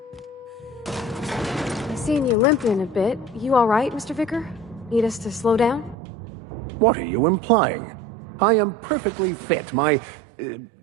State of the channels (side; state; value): left; drops out; at 6.0 s